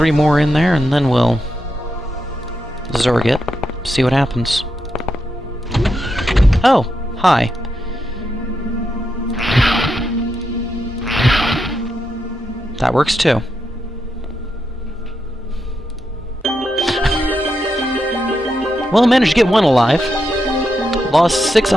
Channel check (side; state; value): both; normal; correlation 0.84